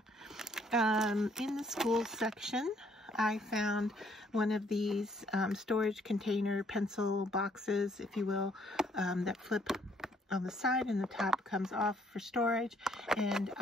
In the school section, I found one of these storage container pencil boxes, if you will, that flip on the side, and the top comes off for storage. And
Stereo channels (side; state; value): both; normal; correlation 0.66